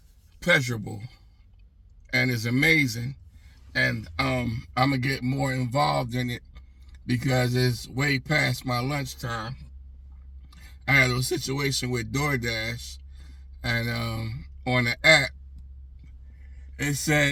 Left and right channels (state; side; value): identical; both; correlation 1.00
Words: pleasurable and is amazing. And I'm gonna get more involved in it because it's way past my lunchtime. I had a situation with DoorDash, and on the app, it